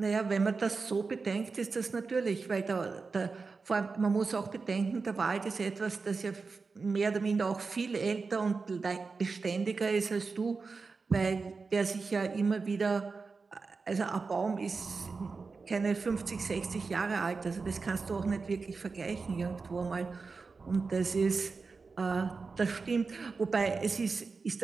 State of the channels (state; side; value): quieter; left; 4.5 dB